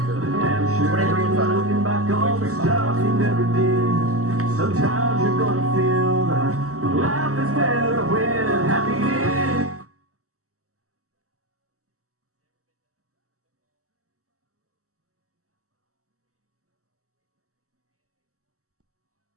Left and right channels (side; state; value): left; late; 0.65 ms